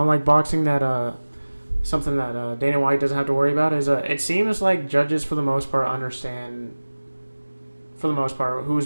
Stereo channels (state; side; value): inverted; both; correlation -1.00